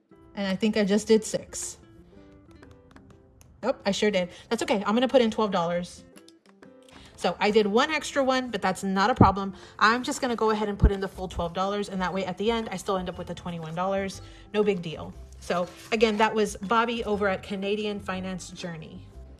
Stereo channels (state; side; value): identical; both; correlation 1.00